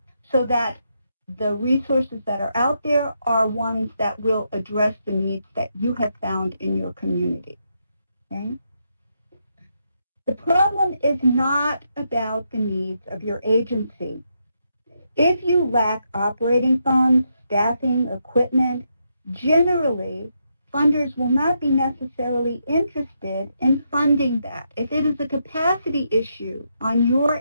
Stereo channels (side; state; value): both; inverted; correlation -0.81